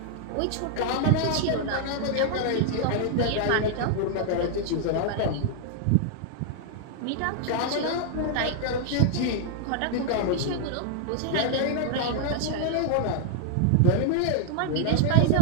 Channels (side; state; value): both; different; correlation 0.00